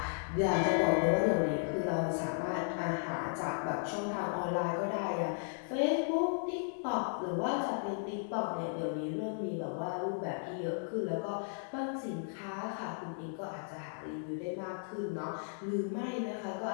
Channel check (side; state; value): right; silent; digital silence